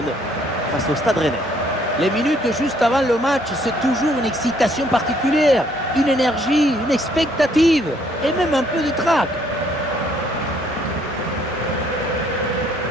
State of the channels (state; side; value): normal; both; correlation 0.65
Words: face au Stade Rennais. Les minutes juste avant le match, c'est toujours une excitation particulière, une énergie, une expectative et même un peu de trac.